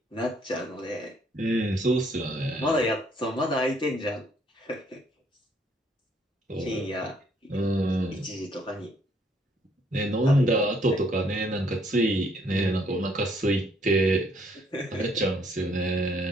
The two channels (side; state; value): both; normal; correlation 0.67